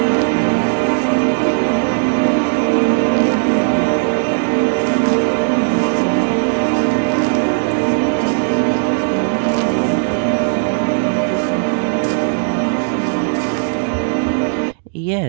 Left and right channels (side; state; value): left; silent; digital silence